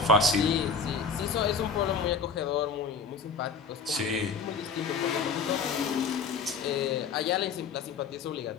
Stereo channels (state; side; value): quieter; right; 5.1 dB